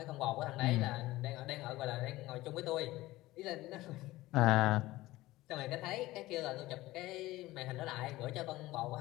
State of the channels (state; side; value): quieter; right; 17.8 dB